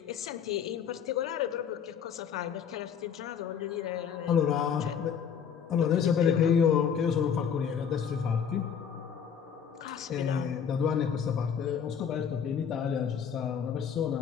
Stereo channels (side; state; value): right; quieter; 7.5 dB